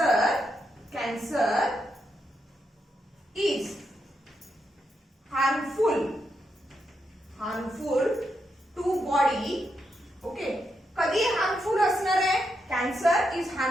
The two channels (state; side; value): normal; both; correlation 0.83